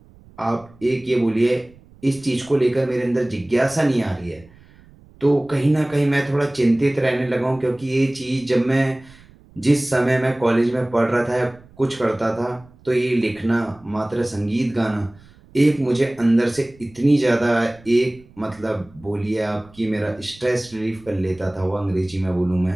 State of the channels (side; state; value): right; noise; rumble, 25 dB below the sound